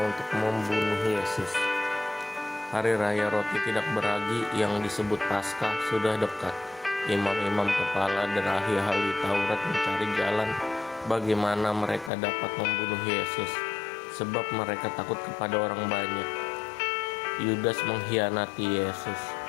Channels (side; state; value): right; drops out; at 12.1 s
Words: untuk membunuh Yesus. Hari Raya Roti Tidak Beragi yang disebut Paskah sudah dekat. Imam-imam kepala dan ahli-ahli Taurat mencari jalan bagaimana mereka dapat membunuh Yesus, sebab mereka takut kepada orang banyak. Yudas mengkhianati Yesus.